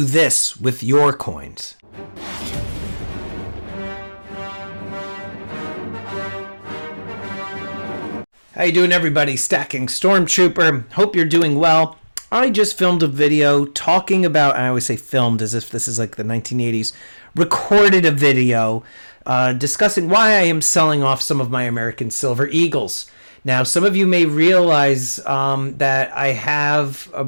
this with your coins. How you doing, everybody? Stacking Stormtrooper. Hope you're doing well. I just filmed a video talking about, I always say filmed as if this is like the 1980s, recorded a video discussing why I am selling off some of my American Silver Eagles. Now, some of you may realize that I have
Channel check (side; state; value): both; inverted; correlation -1.00